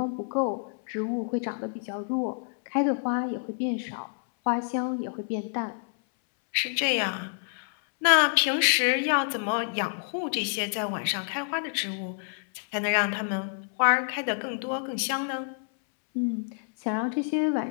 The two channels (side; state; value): right; silent; 59 dB below the other